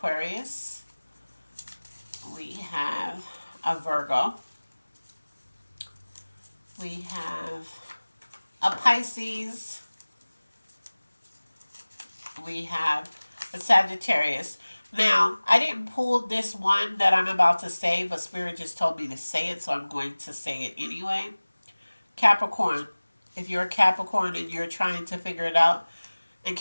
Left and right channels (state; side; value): inverted; both; correlation -1.00